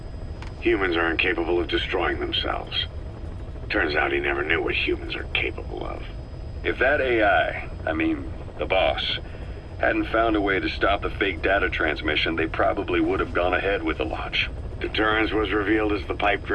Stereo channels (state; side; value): identical; both; correlation 1.00